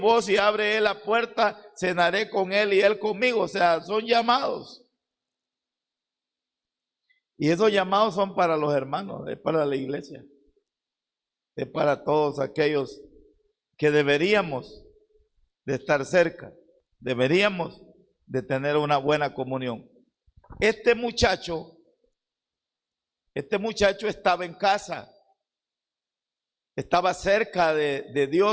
y abre él la puerta, cenaré con él y él conmigo. O sea, son llamados. Y esos llamados son para los hermanos, es para la iglesia, es para todos aquellos que deberíamos de estar cerca, deberíamos de tener una buena comunión. Este muchacho estaba en casa, estaba cerca de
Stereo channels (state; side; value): identical; both; correlation 1.00